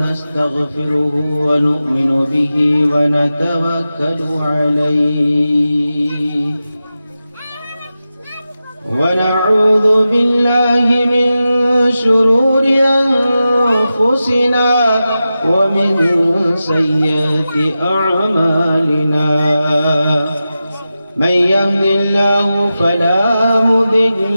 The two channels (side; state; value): both; inverted; correlation -0.92